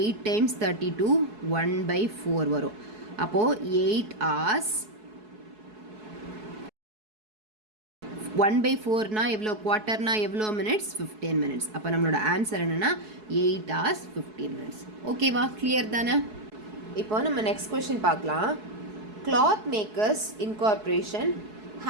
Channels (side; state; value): left; late; 4.7 ms